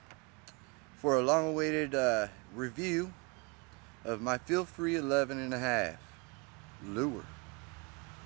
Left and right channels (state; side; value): quieter; left; 29.4 dB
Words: for a long-awaited review of my FeelFree 11.5 lure.